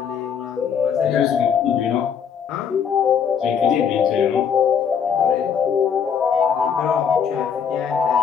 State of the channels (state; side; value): quieter; right; 7.3 dB